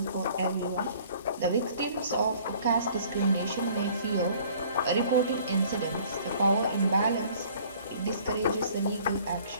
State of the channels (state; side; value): inverted; both; correlation -0.54